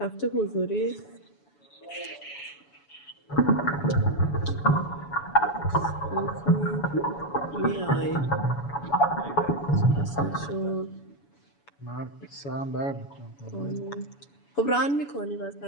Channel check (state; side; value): late; right; 7.0 ms